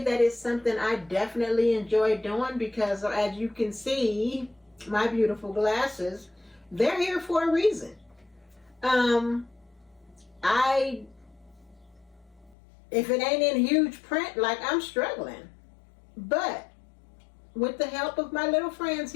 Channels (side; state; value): right; drops out; at 12.6 s